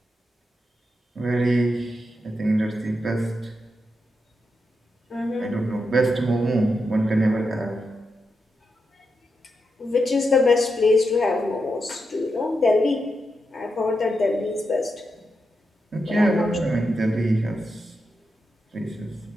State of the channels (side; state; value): both; normal; correlation 0.86